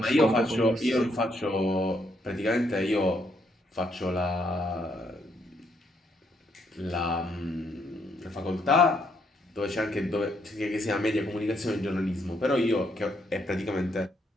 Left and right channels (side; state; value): both; normal; correlation 0.73